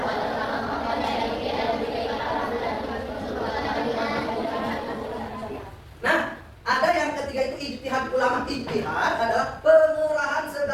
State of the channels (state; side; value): identical; both; correlation 1.00